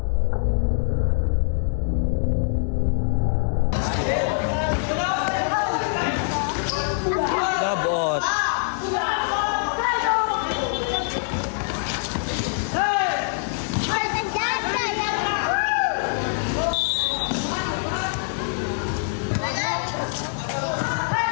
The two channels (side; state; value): right; silent; digital silence